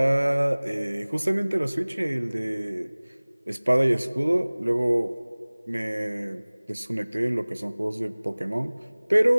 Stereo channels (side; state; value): both; inverted; correlation -1.00